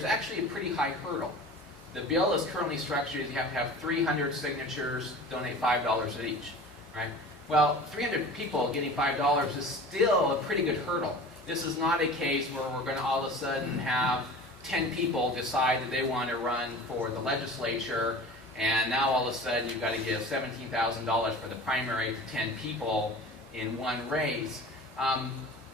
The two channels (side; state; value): both; normal; correlation 0.38